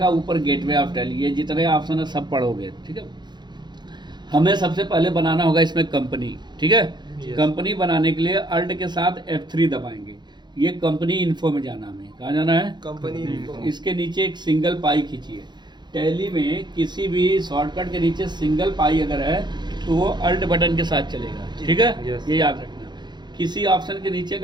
ऊपर गेटवे ऑफ टैली, ये जितने ऑप्शन है सब पढ़ोगे, ठीक है। हमें सबसे पहले बनाना होगा इसमें कंपनी, ठीक है। कंपनी बनाने के लिए अल्ट के साथ F3 दबाएंगे। ये कंपनी इन्फो में जाना, हमें कहाँ जाना है? Company info. इसके नीचे एक सिंगल पाई खींचिए। टैली में किसी भी शॉर्टकट के नीचे सिंगल पाई अगर है तो वो अल्ट बटन के साथ चलेगा, ठीक है। ये याद रखना। किसी ऑप्शन के नीचे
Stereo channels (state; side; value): late; left; 0.21 ms